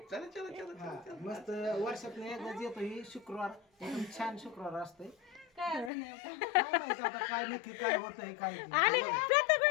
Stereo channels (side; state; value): right; drops out; at 5.9 s